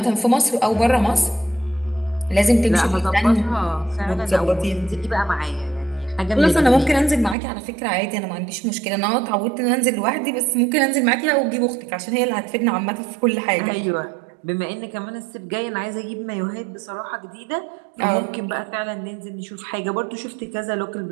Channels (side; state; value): left; drops out; at 7.4 s